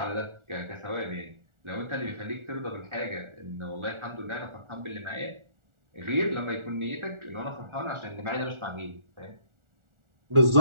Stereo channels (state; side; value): late; left; 1.4 ms